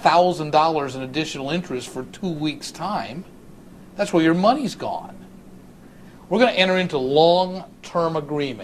in additional interest for 2 weeks' time. That's where your money's gone. We're going to enter into long-term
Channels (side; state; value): both; identical; correlation 1.00